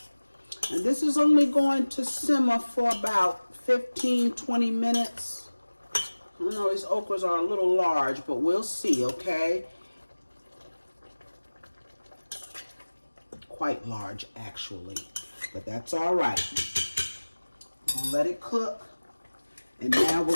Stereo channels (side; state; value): both; inverted; correlation -1.00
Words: And this is only going to simmer for about 15-20 minutes. I know these okras are a little large, but we'll see, okay? Quite large, actually, but that's all right. I'm gonna let it cook, and now we're